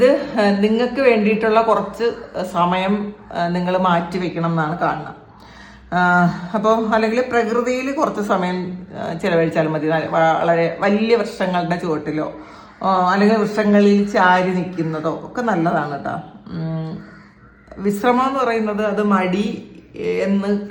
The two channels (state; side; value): identical; both; correlation 1.00